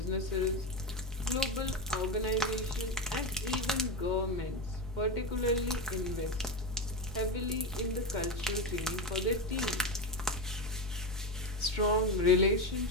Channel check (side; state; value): both; normal; correlation 0.15